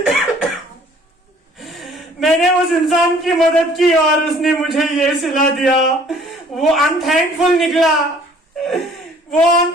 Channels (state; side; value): normal; both; correlation 0.55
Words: मैंने उस इंसान की मदद की और उसने मुझे ये सिला दिया। वो अनथैंकफुल निकला, वो